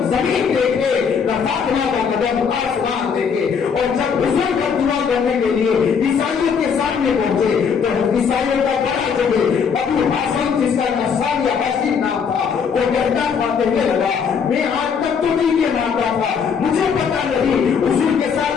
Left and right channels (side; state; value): right; quieter; 6.5 dB